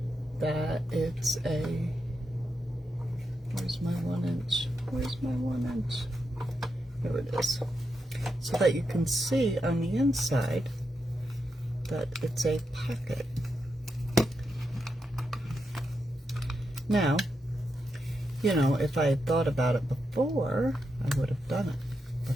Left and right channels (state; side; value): normal; both; correlation 0.85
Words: that it's a, where's my 1 inch? Where's my 1 inch? Here it is. So that you can see on the inside that it's a pocket. Now, you know, if I had thought about it before, I would have done it,